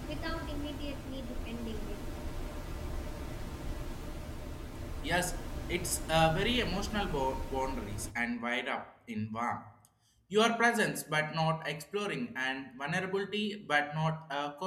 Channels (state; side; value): identical; both; correlation 1.00